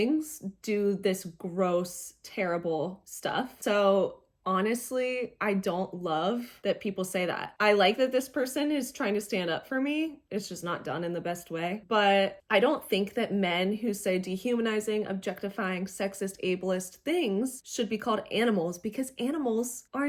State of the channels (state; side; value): identical; both; correlation 1.00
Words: do this gross, terrible stuff. So honestly, I don't love that people say that. I like that this person is trying to stand up for me. It's just not done in the best way. But I don't think that men who say dehumanizing, objectifying, sexist, ableist things should be called animals, because animals are